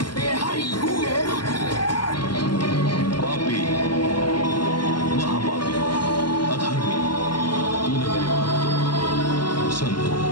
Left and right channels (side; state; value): right; late; 0.71 ms